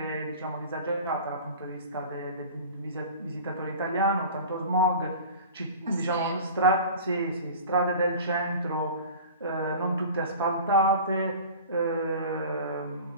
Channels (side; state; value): both; inverted; correlation -0.38